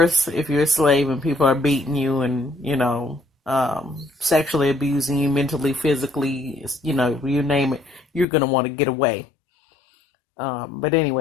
if you're a slave and people are beating you and, sexually abusing you, mentally, physically, you name it, you're going to want to get away. But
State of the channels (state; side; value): drops out; right; at 8.2 s